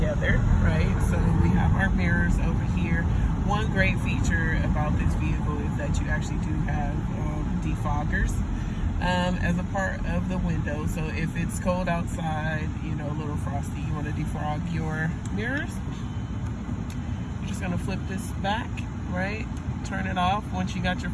right? So we have our mirrors over here. One great feature about this vehicle is that you actually do have defoggers as a part of the window. So if it's cold outside, you know, a little frosty, you want to defrog your mirrors, you're just gonna flip this back, right? Turn it off once you got your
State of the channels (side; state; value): both; identical; correlation 1.00